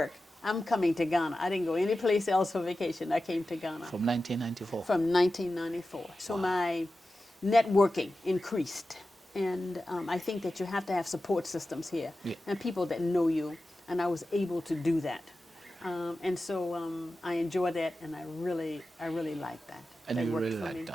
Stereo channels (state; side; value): normal; both; correlation 0.93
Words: I'm coming to Ghana. I didn't go any place else for vacation, I came to Ghana. From 1994? From 1994. So my networking increased. And I think that you have to have support systems here and people that know you, and I was able to do that. And so I enjoy that, and I really like that. And That you worked really for like me.